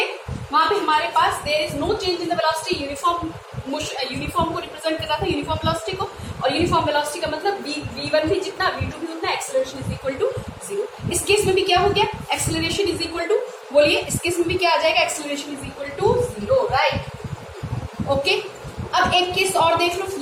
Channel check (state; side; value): identical; both; correlation 1.00